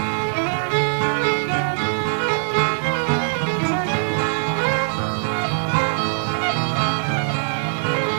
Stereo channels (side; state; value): left; silent; digital silence